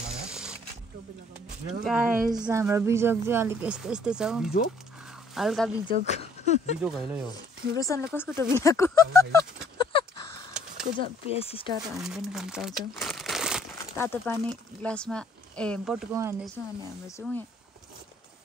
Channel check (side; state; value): both; normal; correlation 0.61